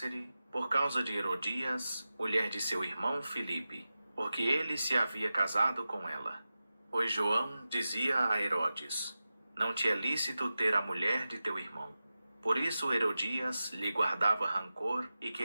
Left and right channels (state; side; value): inverted; both; correlation -0.94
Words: por causa de Herodias, mulher de seu irmão Filipe, porque ele se havia casado com ela. Pois João dizia a Herodes: não te é lícito ter a mulher de teu irmão. Por isso Herodias lhe guardava rancor e